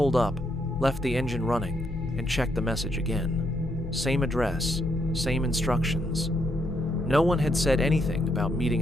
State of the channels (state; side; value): noise; left; hum, 10 dB below the sound